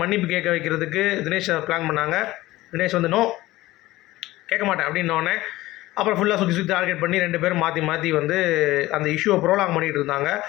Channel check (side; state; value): right; quieter; 17.7 dB